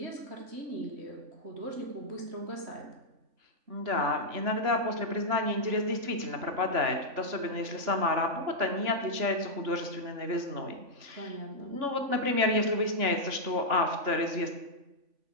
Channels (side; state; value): left; late; 3.5 ms